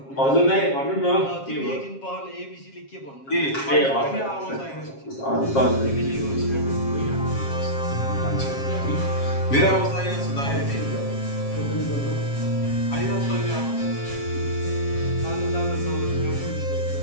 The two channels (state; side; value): late; right; 7.4 ms